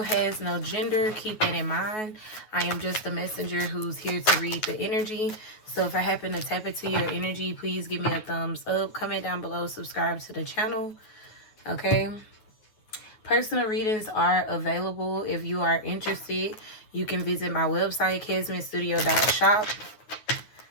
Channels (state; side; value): late; right; 9.4 ms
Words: has no gender. Keep that in mind. I am just a messenger who's here to read the energy. So if I happen to tap into your energy, please give me a thumbs up. Comment down below. Subscribe to the channel. Okay. Personal readings are available. If you are interested, you can visit my website, kesmanstudio.shop.